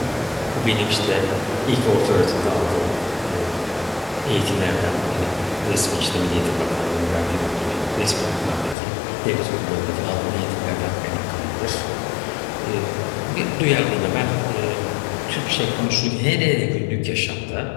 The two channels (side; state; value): right; drops out; at 8.8 s